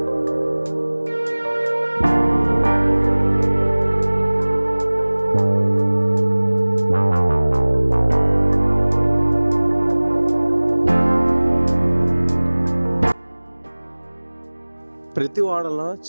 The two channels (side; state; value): both; inverted; correlation -1.00